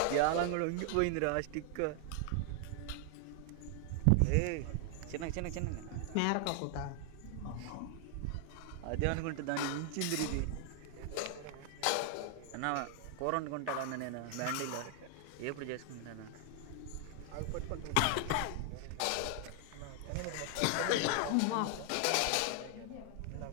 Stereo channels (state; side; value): different; both; correlation 0.00